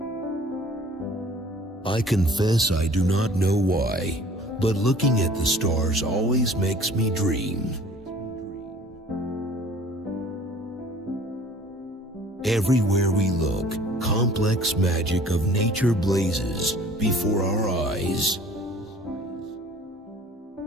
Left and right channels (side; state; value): both; normal; correlation 0.50